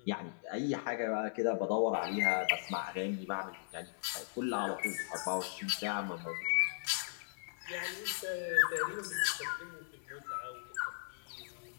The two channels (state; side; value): silent; right; digital silence